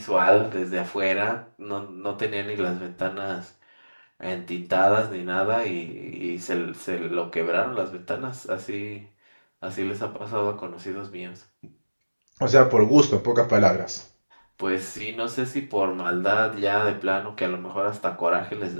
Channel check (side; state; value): both; inverted; correlation -1.00